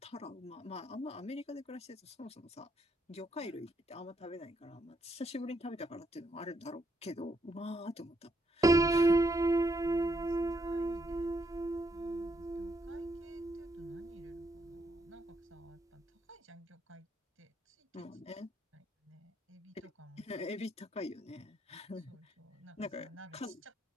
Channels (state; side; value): normal; both; correlation 0.76